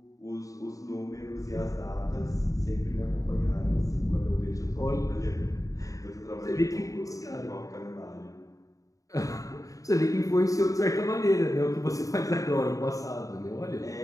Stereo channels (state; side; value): late; right; 0.16 ms